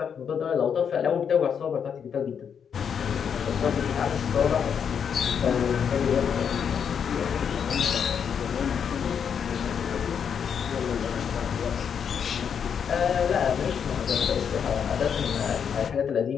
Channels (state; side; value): quieter; right; 7.4 dB